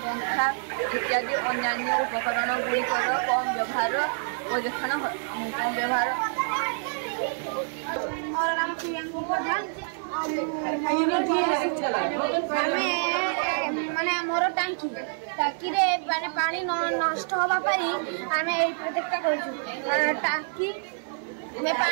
पंखा इत्यादि अन्य उपकरण गुड़िकर कम व्यवहार परीक्षण कम व्यवहार। और नाम प्रियंका प्रधान माने मोर टांकी रे माने पानी नष्ट होबा परी आमे एई प्रोजेक्ट करछु। टांकी में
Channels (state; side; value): silent; left; digital silence